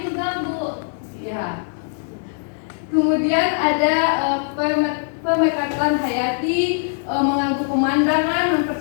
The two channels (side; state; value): right; silent; digital silence